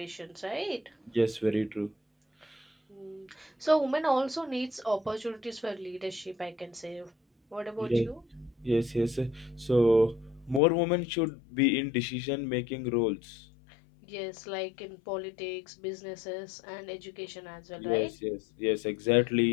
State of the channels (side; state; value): right; drops out; at 10.6 s